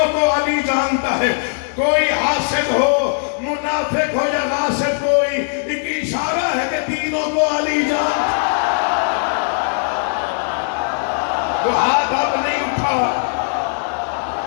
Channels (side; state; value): right; silent; 62 dB below the other